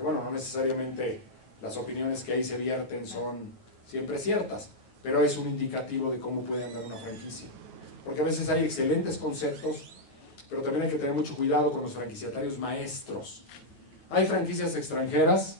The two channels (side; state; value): right; late; 9.3 ms